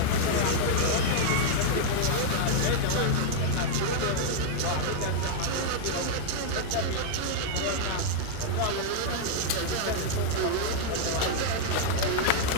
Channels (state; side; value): different; both; correlation -0.01